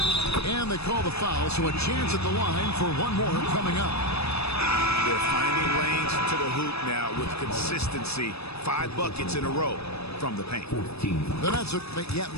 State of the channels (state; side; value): late; right; 0.79 ms